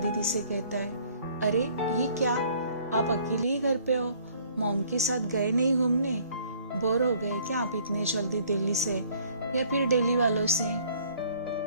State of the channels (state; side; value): inverted; both; correlation -0.58